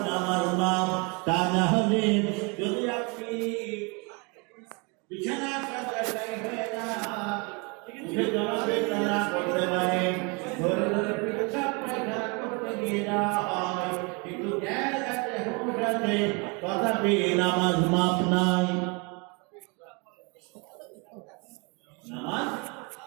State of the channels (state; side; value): quieter; left; 31.0 dB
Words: নামাজ মাপ তা না হলে যদি আপনি বিছানা হয়ে যান উঠে জমাবে তারা করতে পারে ধরে ধরে পেশাব পায়খানা করতে গিয়ে যাওয়া হয় কিন্তু জ্ঞান আছে হুঁশ আছে তথাপি নামাজ মাপ নাই নামাজ